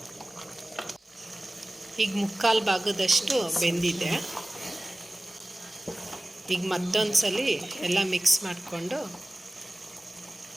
ಈಗ 3/4 ಭಾಗದಷ್ಟು ಬೆಂದಿದೆ. ಈಗ ಮತ್ತೊಂದು ಸಲ ಎಲ್ಲ ಮಿಕ್ಸ್ ಮಾಡಿಕೊಂಡು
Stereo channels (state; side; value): normal; both; correlation 0.96